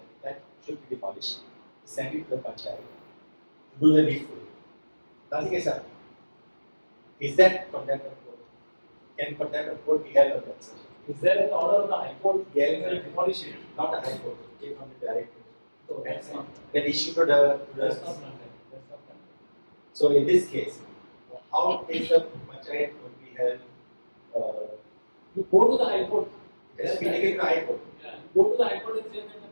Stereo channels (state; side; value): inverted; both; correlation -1.00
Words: that should be demolished, sent it to the Panchayat to do the needful. Nothing is happened. Is that contempt of court? Can contempt of court be held on that, sir? Is there an order of the High Court Yeah, to demolish it? not the High Court, it came from the director. So that's not. Then issued to the That's not contempt. That's not contempt. So in this case, how is the Panchayat would be held? You go to the High Court. It has been taken to the High Court. Yeah. You go to the High Court and say that